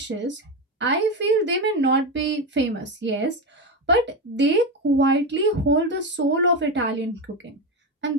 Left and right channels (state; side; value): normal; both; correlation 0.15